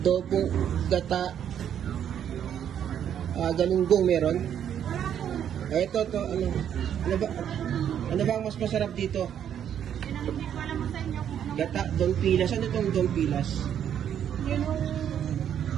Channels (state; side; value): quieter; left; 9.4 dB